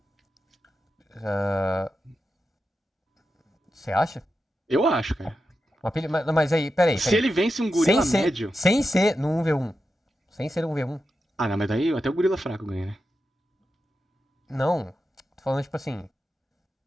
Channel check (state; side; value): normal; both; correlation 0.89